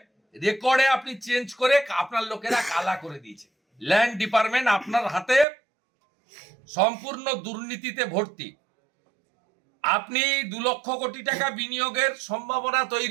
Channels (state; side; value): drops out; left; at 5.5 s